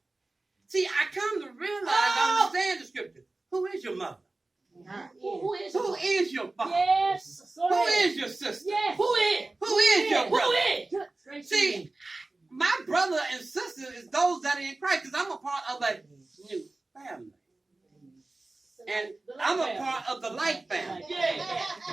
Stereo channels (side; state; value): left; quieter; 3.1 dB